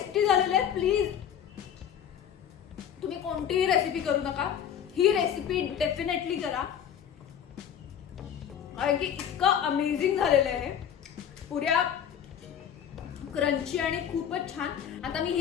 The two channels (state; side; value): quieter; right; 9.0 dB